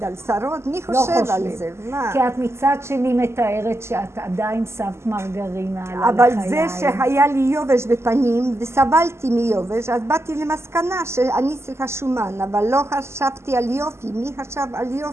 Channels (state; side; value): late; left; 0.13 ms